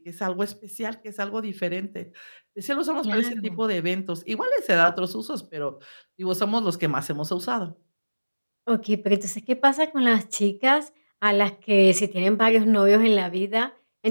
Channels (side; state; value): both; inverted; correlation -1.00